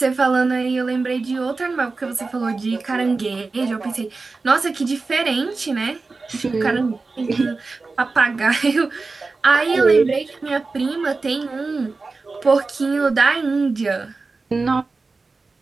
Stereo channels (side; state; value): left; quieter; 3.9 dB